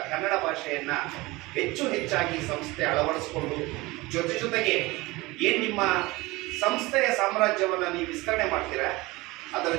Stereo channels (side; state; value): left; quieter; 21.7 dB